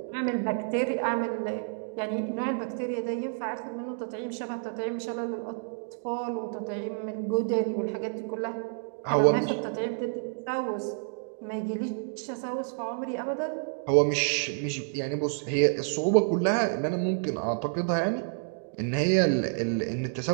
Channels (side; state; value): left; silent; digital silence